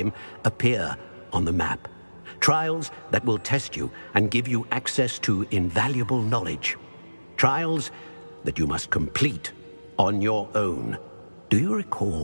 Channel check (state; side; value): inverted; both; correlation -1.00